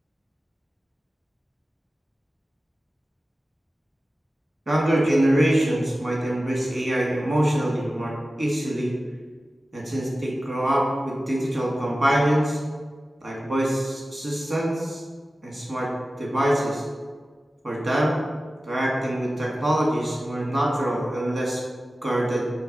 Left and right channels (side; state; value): both; normal; correlation 0.95